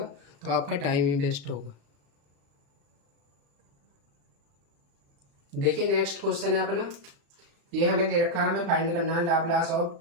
तो आपका टाइम ही वेस्ट होगा। देखिए नेक्स्ट क्वेश्चन है अपना, ये हमें दे रखा है, हमें फाइंड करना है लाप्लास ऑफ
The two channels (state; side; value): late; left; 35 ms